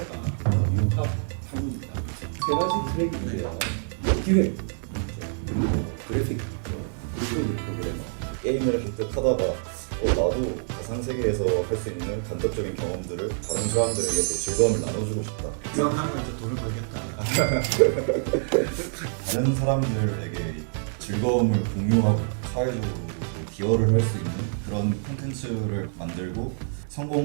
융합 학문입니다. 세 가지 트랙이 있는데요. 기획, 그리고 그래픽, 그리고 프로그래머. 게임을 문득 하다가 나도 가상 세계에서 할 수 있는 간접적인 경험들을 다른 사람들에게 또 즐거움을 나눠주고 싶다. 유학하면 이제 돈을 벌겠다. 다른 사람들에게 즐거움을 공유하고 사회적으로 또 기여를 할 수 있는 그런 콘텐츠를 만들고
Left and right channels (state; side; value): silent; left; digital silence